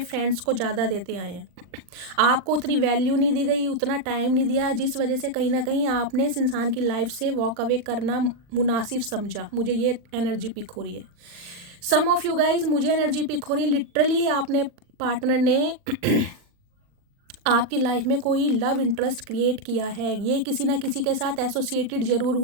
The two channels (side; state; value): left; late; 39 ms